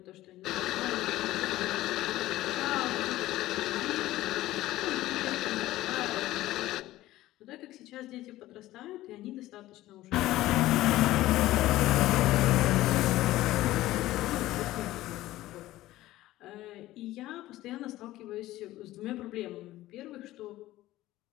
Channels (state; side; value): quieter; right; 16.0 dB